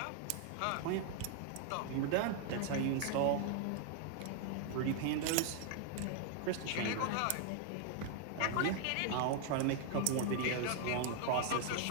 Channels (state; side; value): different; both; correlation 0.00